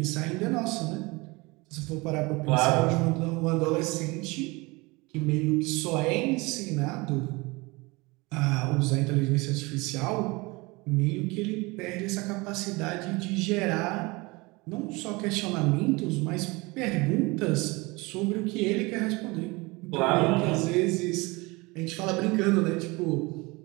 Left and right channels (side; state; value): left; quieter; 24.6 dB